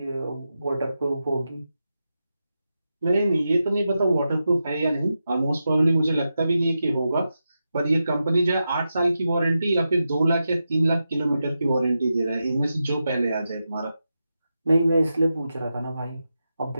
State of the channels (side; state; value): both; inverted; correlation -0.89